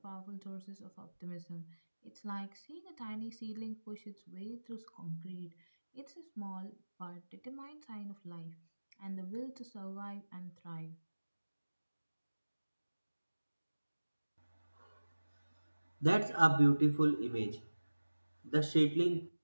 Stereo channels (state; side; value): inverted; both; correlation -1.00